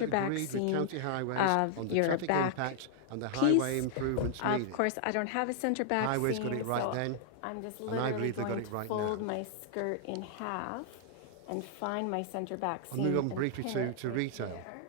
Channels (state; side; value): different; both; correlation 0.00